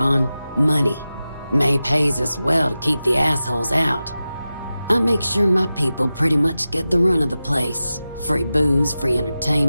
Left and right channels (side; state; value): both; inverted; correlation -0.94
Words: Money. May pays us well to keep the assholes out. I make sure my people pretty much get the run of the place. Free booze, free